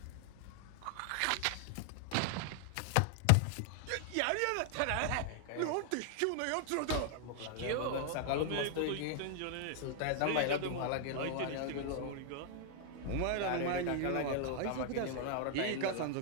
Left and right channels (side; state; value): both; different; correlation 0.00